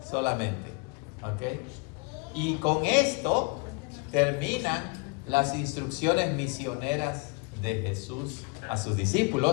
solamente. ¿Ok? Y con esto terminan las instrucciones misioneras de Jesús a sus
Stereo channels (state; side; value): quieter; right; 31.4 dB